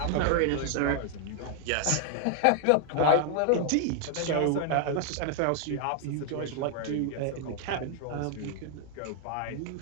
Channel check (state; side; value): different; both; correlation 0.00